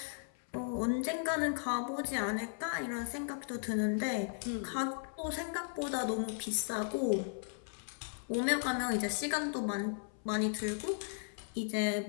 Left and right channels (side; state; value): right; silent; 54 dB below the other